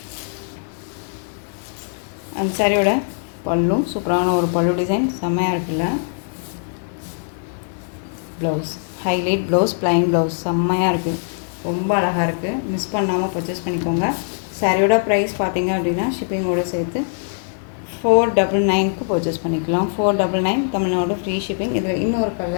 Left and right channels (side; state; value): right; silent; digital silence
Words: அந்த சாரியோட பல்லும் சூப்பரான ஒரு பல்லு டிசைன். செம்மையாக இருக்குல்ல. Blouse highlight blouse, plain blouse. செம்மையாக இருக்குது. ரொம்ப அழகாக இருக்குது. மிஸ் பண்ணாமல் பர்ச்சேஸ் பண்ணிக்கோங்க. சாரியோட ப்ரைஸ் பார்த்தீங்க அப்படின்னா ஷிப்பிங்கோடு சேர்த்து 499க்கு பர்ச்சேஸ் பண்ணிக்கலாம். 499 தமிழ்நாடு ஃப்ரீ ஷிப்பிங். இதில் இன்னொரு